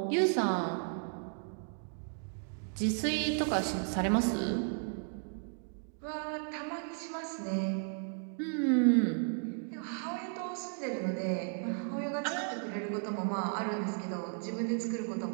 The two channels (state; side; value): silent; left; 55 dB below the other